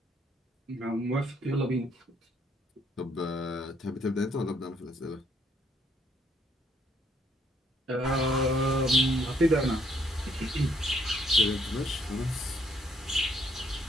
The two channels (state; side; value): normal; both; correlation 0.68